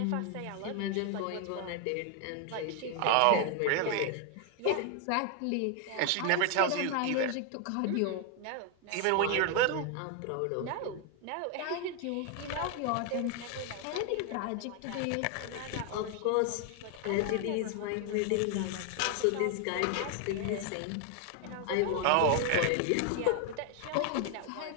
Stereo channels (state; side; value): different; both; correlation 0.00